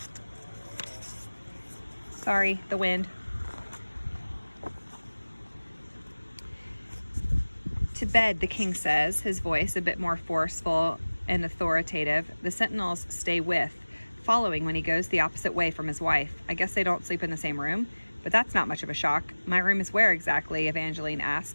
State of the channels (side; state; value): both; inverted; correlation -1.00